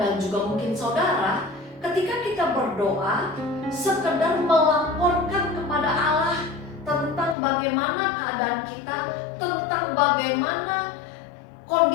dan juga mungkin saudara, ketika kita berdoa sekedar melaporkan kepada Allah tentang bagaimana keadaan kita, tentang bagaimana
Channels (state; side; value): drops out; right; at 7.4 s